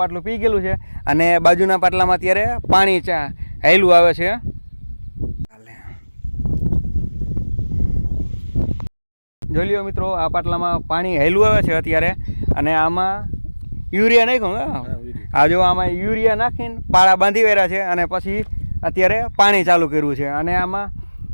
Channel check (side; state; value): both; inverted; correlation -1.00